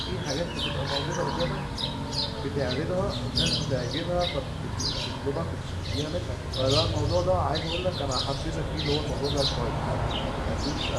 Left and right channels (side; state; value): both; identical; correlation 1.00